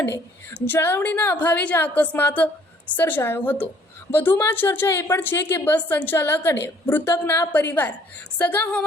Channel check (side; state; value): both; normal; correlation 0.59